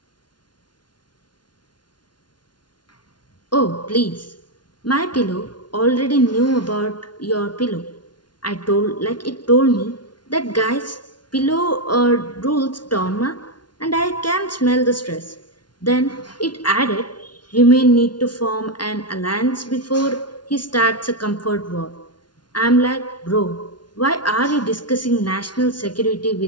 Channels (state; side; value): late; right; 0.70 ms